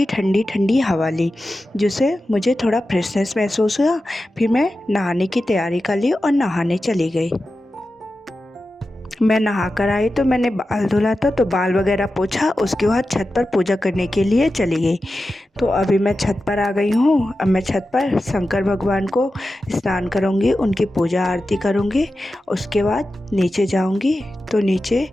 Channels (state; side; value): normal; both; correlation 0.92